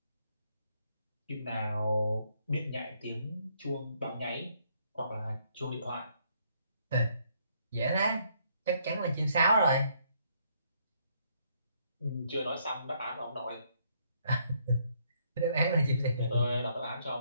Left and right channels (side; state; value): both; inverted; correlation -0.70